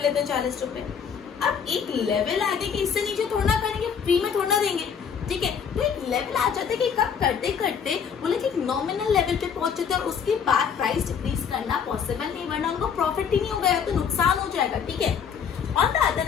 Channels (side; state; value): right; quieter; 7.1 dB